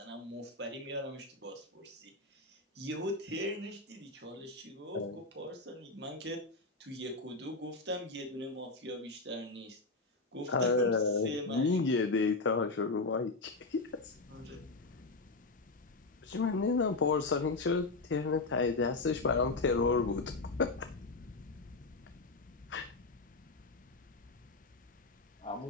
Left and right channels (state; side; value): quieter; right; 3.5 dB